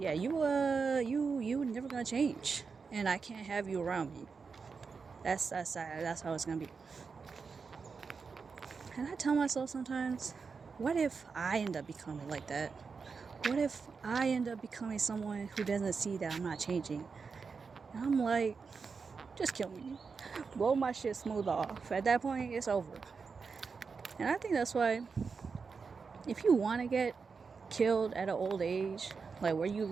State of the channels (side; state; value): left; quieter; 5.1 dB